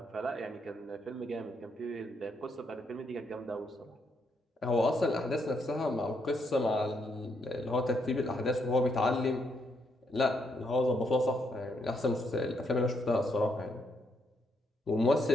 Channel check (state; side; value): normal; both; correlation 0.76